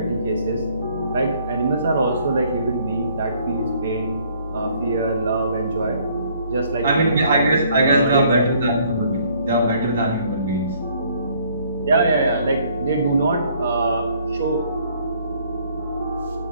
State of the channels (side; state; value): both; inverted; correlation -0.63